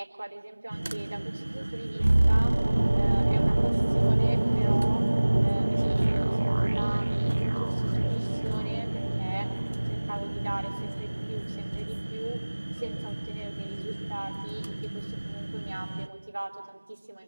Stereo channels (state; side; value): inverted; both; correlation -1.00